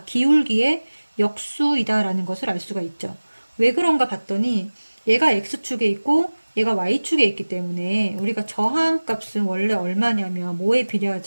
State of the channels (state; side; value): inverted; both; correlation -1.00